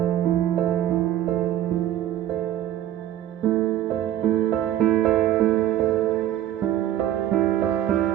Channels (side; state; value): left; quieter; 12.3 dB